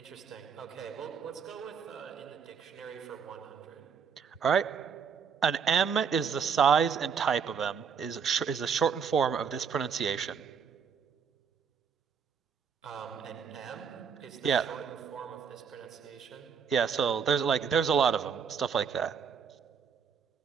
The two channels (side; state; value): left; quieter; 6.7 dB